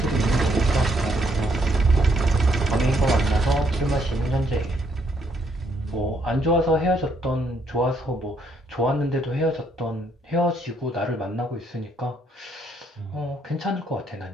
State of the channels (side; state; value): both; normal; correlation 0.71